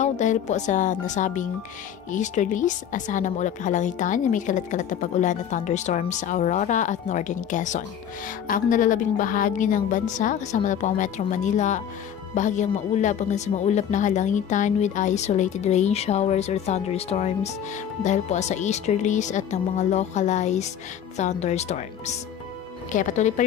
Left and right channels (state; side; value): quieter; right; 9.2 dB